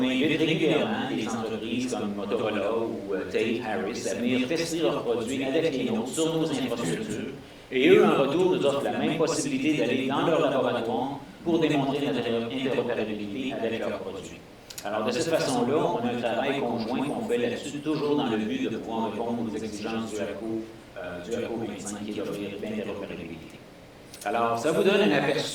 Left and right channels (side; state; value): both; identical; correlation 1.00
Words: invite régulièrement des entreprises comme Motorola ou Tate, Harris à venir tester leurs produits avec les nôtres sur nos infrastructures, et eux, en retour, nous offrent la même possibilité d'aller dans leur laboratoire pour démontrer notre interopérabilité avec leurs produits. Alors, de cette façon-là, on a un travail conjoint qu'on fait là-dessus, toujours dans le but de pouvoir répondre aux exigences du APCO 25, qui est d'offrir l'interopérabilité. Alors, ça vous donne un